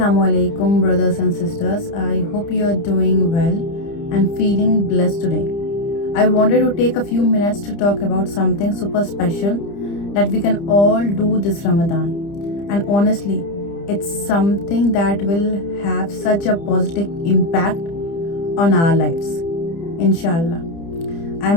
alaikum, brothers and sisters. I hope you are doing well and feeling blessed today. I wanted to take a few minutes to talk about something super special that we can all do this Ramadan. And honestly, it's something that will have such a positive impact on our lives. Inshallah. I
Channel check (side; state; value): right; late; 30 ms